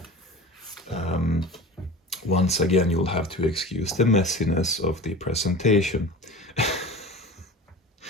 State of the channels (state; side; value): normal; both; correlation 0.35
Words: Once again, you'll have to excuse the messiness of the presentation.